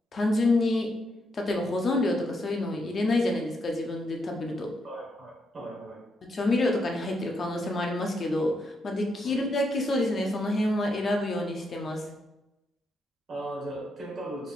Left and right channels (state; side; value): normal; both; correlation 0.80